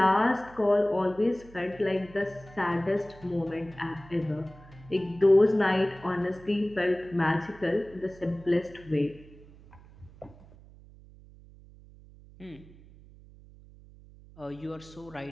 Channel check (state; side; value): noise; right; hum, 22 dB below the sound